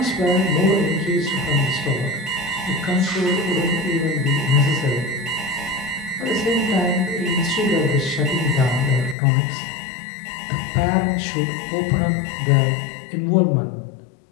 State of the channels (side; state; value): right; drops out; at 9.2 s